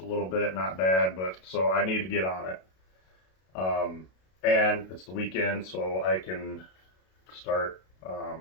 little bit, not bad, but so I need to get on it. And it's the weekend, so I can start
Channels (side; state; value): right; late; 32 ms